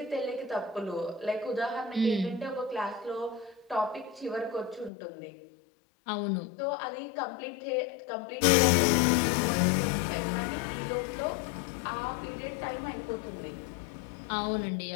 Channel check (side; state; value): right; drops out; at 4.9 s